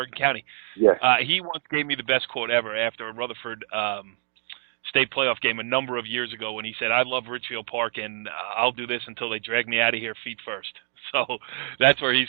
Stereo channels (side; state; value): left; silent; digital silence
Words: County. Yes. He once gave me the best quote ever after a Rutherford state playoff game a number of years ago when he said, "I love Ridgefield Park and I'll do this until they drag me out of here feet first." So that's where he's